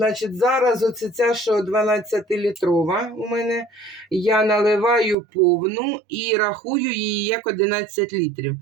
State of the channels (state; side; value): drops out; left; at 5.2 s